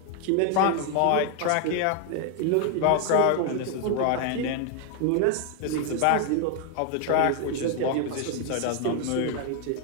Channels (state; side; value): different; both; correlation 0.00